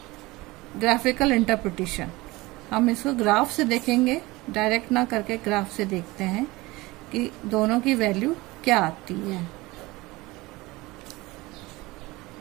graphical interpretation. हम इसको ग्राफ से देखेंगे, डायरेक्ट ना करके ग्राफ से देखते हैं कि दोनों की वैल्यू क्या आती है।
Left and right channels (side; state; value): left; quieter; 21.2 dB